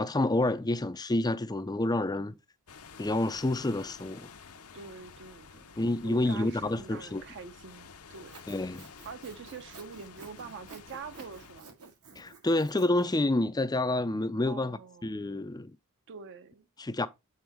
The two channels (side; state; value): both; normal; correlation 0.73